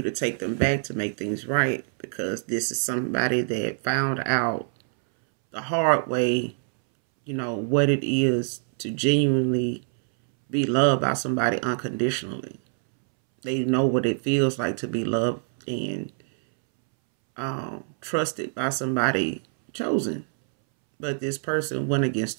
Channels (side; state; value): left; silent; 62 dB below the other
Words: to take them back to make things right, because this is somebody that found out the hard way, what it is to genuinely be loved by somebody unconditionally. They know what it feels like to be loved and trusted by somebody chosen. But this person went